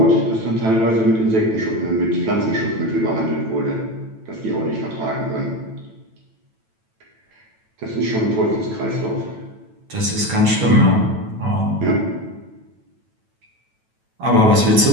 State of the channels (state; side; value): late; left; 9.1 ms